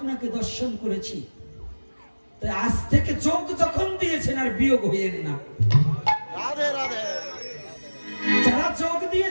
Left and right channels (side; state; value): both; inverted; correlation -1.00